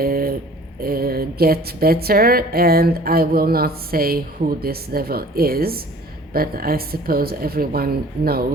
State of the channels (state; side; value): normal; both; correlation 0.49